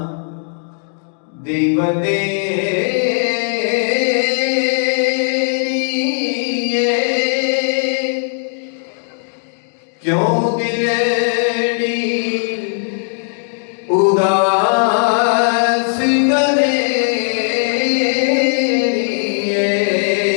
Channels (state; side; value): silent; right; 59 dB below the other